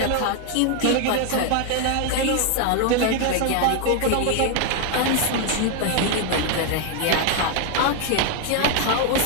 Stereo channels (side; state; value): both; different; correlation 0.00